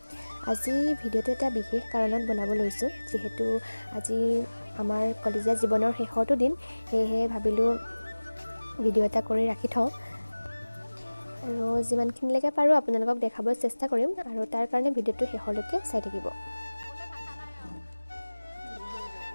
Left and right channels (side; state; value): both; inverted; correlation -1.00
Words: আজি ভিডিঅ'টো এটা বিশেষ কাৰণত বনাব লৈছোঁ, যিহেতু আজি আমাৰ কলেজীয়া জীৱনৰ শেষৰটো দিন, সেয়েহে ভাবিলোঁ ভিডিঅ' এটা কৰি ৰাখি থওঁ আৰু যিমানখিনিলৈকে পাৰোঁ আপোনালোকক দেখাবলৈ চেষ্টা কৰিম আৰু তাৰ কাৰণে ভিডিঅ'টো শেষলৈকে চাই থাকিব।